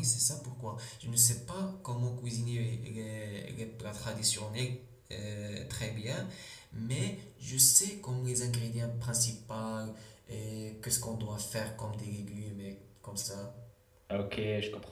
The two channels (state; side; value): identical; both; correlation 1.00